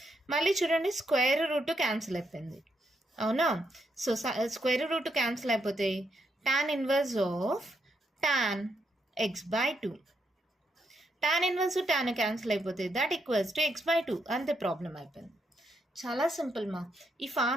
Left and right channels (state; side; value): normal; both; correlation 0.79